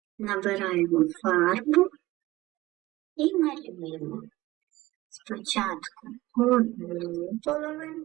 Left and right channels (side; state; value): left; quieter; 18.4 dB